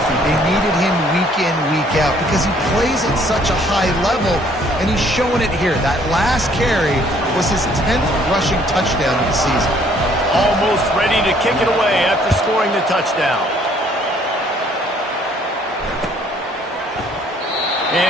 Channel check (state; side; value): normal; both; correlation 0.61